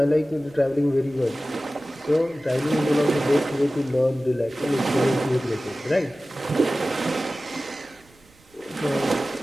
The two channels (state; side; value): noise; right; rumble, 29 dB below the sound